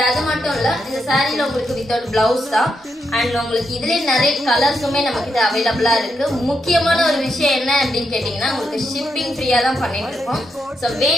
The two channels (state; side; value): normal; both; correlation 0.82